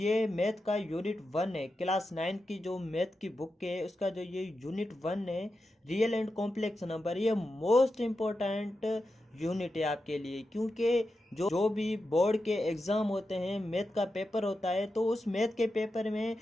मैथ का यूनिट 1 है, क्लास 9 की जो मैथ की बुक है, उसका जो ये यूनिट 1 है रियल एंड कॉम्प्लेक्स नंबर, ये मोस्ट इम्पोर्टेंट यूनिट है आपके लिए। क्योंकि जो भी बोर्ड के एग्ज़ाम होते हैं, मैथ का पेपर होता है, तो उस मैथ के पेपर में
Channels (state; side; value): normal; both; correlation 0.89